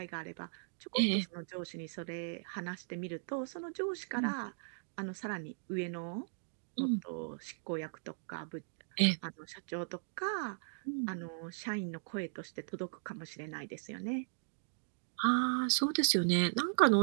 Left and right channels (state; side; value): silent; left; digital silence